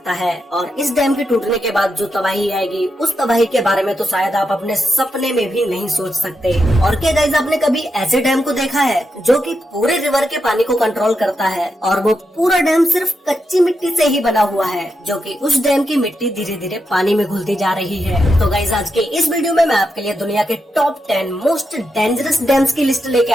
है और इस डैम के टूटने के बाद जो तबाही आएगी उस तबाही के बारे में तो शायद आप अपने सपने में भी नहीं सोच सकते। और क्या गाइस आपने कभी ऐसे डैम को देखा है जो कि पूरे रिवर के पानी को कंट्रोल करता है और वो पूरा डैम सिर्फ कच्ची मिट्टी से ही बना हुआ है जो कि उस डैम की मिट्टी धीरे धीरे पानी में घुलती जा रही है। तो गाइस आज के इस वीडियो में मैं आपके लिए दुनिया के टॉप 10 मोस्ट डेंजरस डैम्स की लिस्ट लेके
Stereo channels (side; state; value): both; normal; correlation 0.85